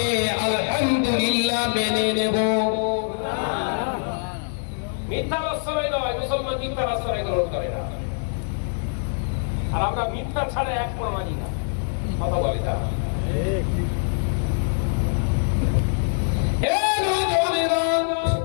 আলহামদুলিল্লাহ মেনে নেব। মিথ্যার আশ্রয় নয়, মুসলমান মিথ্যার আশ্রয় গ্রহণ করে না। আর আমরা মিথ্যা ছাড়া এক পা মানি না, কথা বলে তারা।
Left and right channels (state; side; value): silent; right; 63 dB below the other